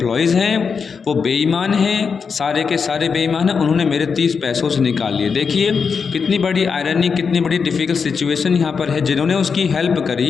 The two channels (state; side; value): quieter; right; 5.7 dB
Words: हैं वो बेईमान हैं, सारे के सारे बेईमान हैं। उन्होंने मेरे 30 पैसों से निकाल लिए। देखिए कितनी बड़ी आयरनी, कितनी बड़ी डिफ़िकल्ट सिचुएशन यहाँ पर है। जिन्होंने उसकी हेल्प